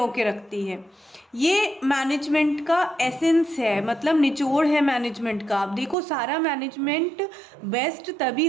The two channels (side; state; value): left; drops out; at 6.0 s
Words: के रखती है। ये मैनेजमेंट का एसेंस है, मतलब निचोड़ है मैनेजमेंट का। अब देखो, सारा मैनेजमेंट बेस्ट तभी